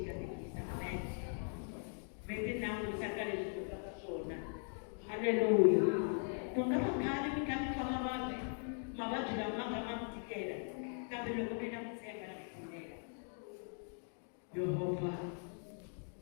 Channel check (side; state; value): right; silent; 51 dB below the other